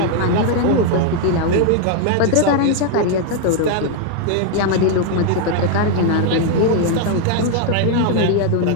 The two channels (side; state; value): both; different; correlation 0.00